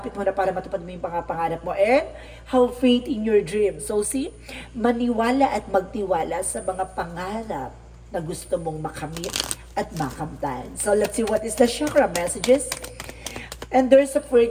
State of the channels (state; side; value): identical; both; correlation 1.00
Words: mo na para matupad mo yung pangarap mo and have faith in your dream. So see, maniwala at magtiwala sa mga pangarap na gusto mong makamit at makamtan. So let's see what is the chakra messages. And there's a